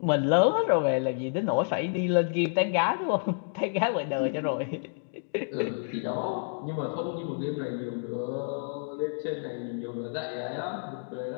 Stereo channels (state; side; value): silent; right; digital silence